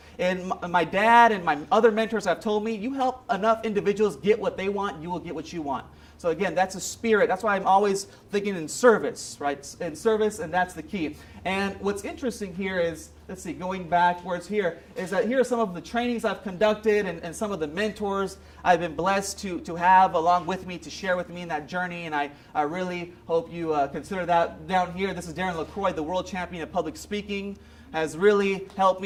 And my dad and my other mentors have told me, you help enough individuals get what they want, you will get what you want. So again, that's a spirit. That's why I'm always thinking in service, right? In service, and that's the key. And what's interesting here is, let's see, going backwards here, is that here are some of the trainings I've conducted and some of the mentors I've been blessed to have along with me, to share with me in that journey. And I really hope you consider that down here. This is Darren LaCroix, the world champion of public speaking. Has really helped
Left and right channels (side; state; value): both; identical; correlation 1.00